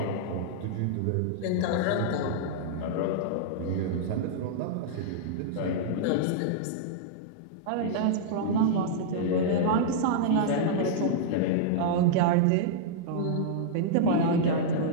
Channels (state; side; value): different; both; correlation -0.02